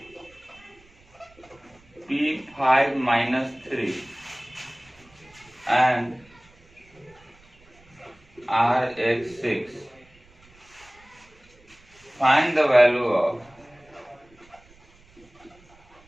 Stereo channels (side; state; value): right; noise; rumble, 28 dB below the sound